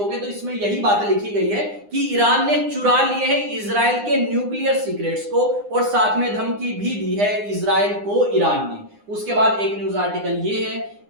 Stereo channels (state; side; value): late; left; 9.8 ms